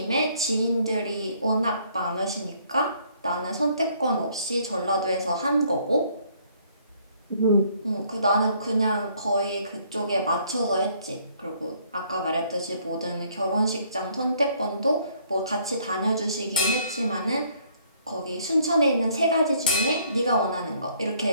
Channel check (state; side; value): inverted; both; correlation -0.64